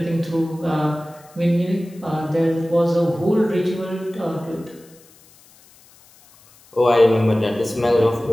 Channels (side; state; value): left; noise; hiss, 27 dB below the sound